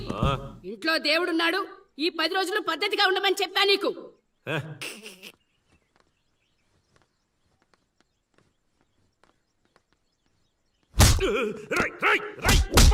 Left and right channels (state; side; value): identical; both; correlation 1.00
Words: ఇంట్లో దేవుడున్నాడు. ఈ 10 రోజులు పద్ధతిగా ఉండమని చెప్పా నీకు. రై రై రై